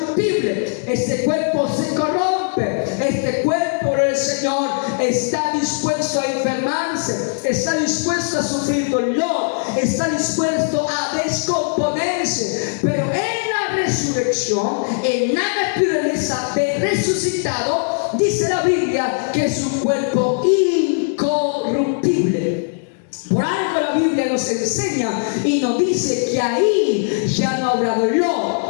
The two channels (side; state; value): right; silent; digital silence